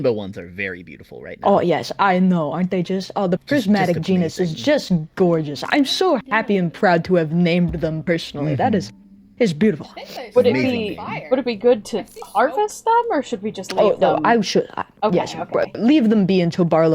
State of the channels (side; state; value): both; identical; correlation 1.00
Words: ones are very beautiful right now. Oh yes, I know, aren't they just? Oh, the prismatic genus is just gorgeous. I'm so happy and proud to have named them personally. That is beautiful. would it Amazing. be good to harvest them, or should we just leave Oh no, them? I should. Okay, yes, okay. leave them be until